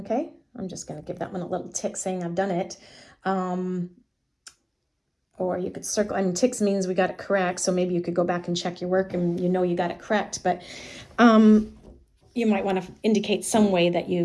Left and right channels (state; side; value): identical; both; correlation 1.00